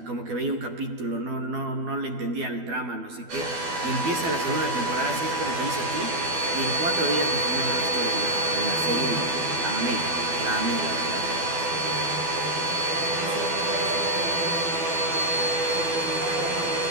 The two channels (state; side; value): late; left; 12 ms